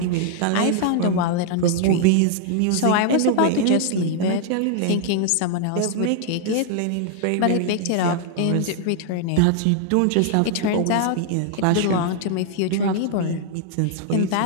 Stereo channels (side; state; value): both; different; correlation 0.00